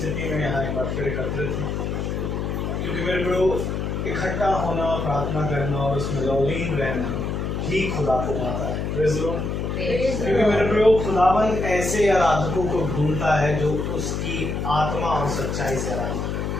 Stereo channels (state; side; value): noise; left; hum, 2 dB below the sound